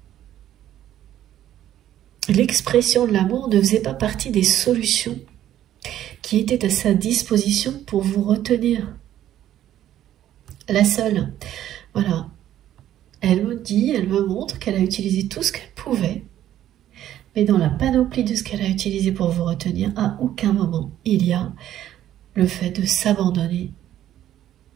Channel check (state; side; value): quieter; left; 12.0 dB